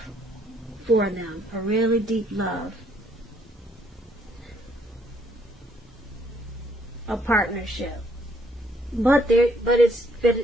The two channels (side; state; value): both; normal; correlation 0.68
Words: for them, a really deep love, a partnership. But it's